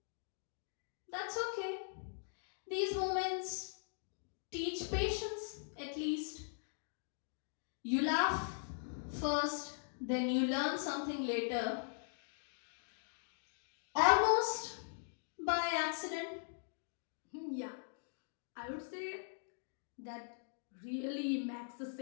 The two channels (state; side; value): silent; right; digital silence